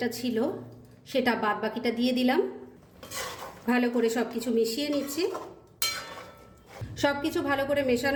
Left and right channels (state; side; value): identical; both; correlation 1.00